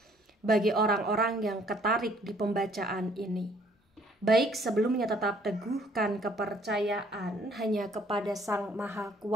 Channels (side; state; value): both; normal; correlation 0.61